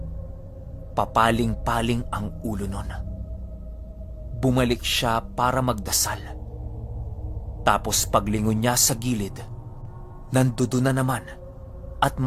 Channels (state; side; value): identical; both; correlation 1.00